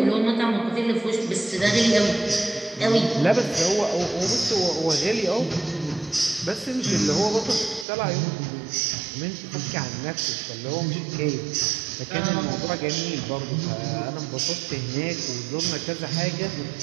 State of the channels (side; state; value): left; drops out; at 7.9 s